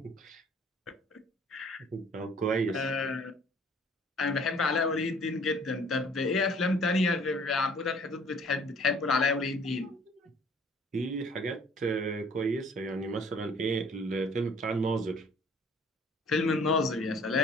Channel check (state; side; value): normal; both; correlation 0.54